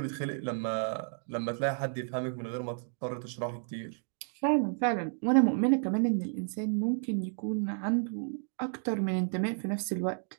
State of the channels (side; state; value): left; silent; 57 dB below the other